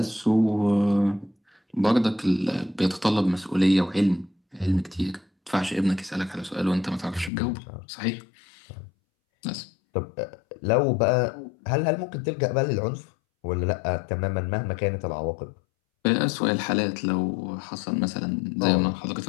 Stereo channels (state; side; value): drops out; right; at 7.3 s